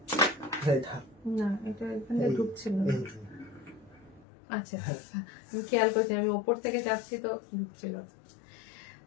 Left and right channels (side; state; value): right; drops out; at 4.2 s